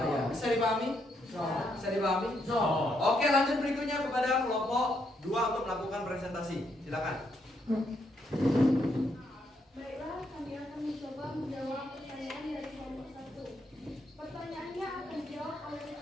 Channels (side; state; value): both; normal; correlation 0.76